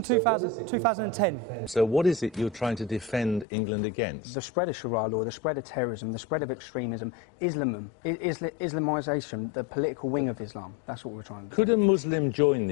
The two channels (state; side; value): drops out; right; at 3.5 s